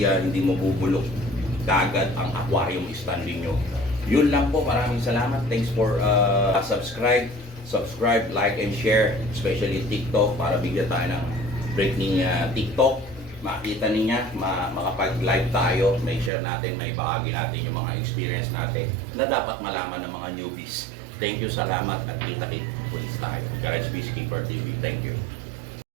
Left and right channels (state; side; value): drops out; left; at 16.3 s